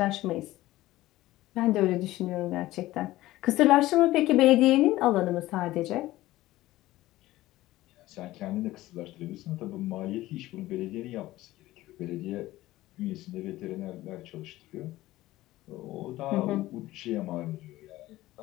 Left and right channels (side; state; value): right; quieter; 16.7 dB